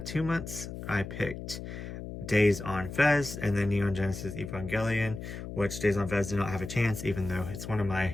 2 months, I picked Days on Fez, and then Neon Genesis Evangelion, which Days on Fez did not have a chance, even though it's one of my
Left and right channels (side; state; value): left; noise; hum, 9 dB below the sound